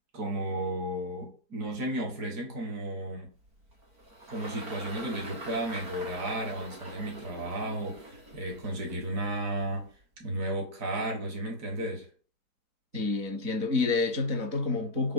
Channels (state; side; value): late; left; 4.4 ms